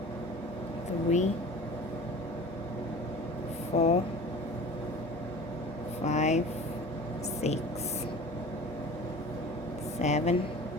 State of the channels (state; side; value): normal; both; correlation 0.40